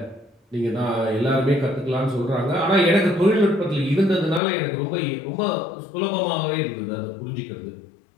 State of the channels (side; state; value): right; drops out; at 4.4 s